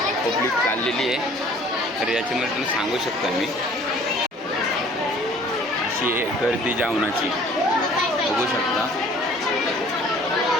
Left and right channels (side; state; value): both; normal; correlation 0.53